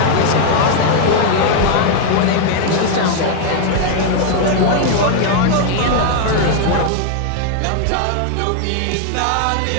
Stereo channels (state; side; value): different; both; correlation 0.00